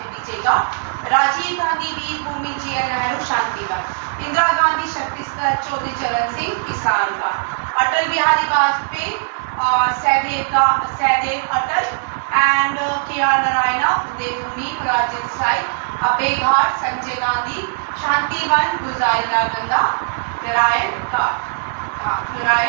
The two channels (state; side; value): silent; left; digital silence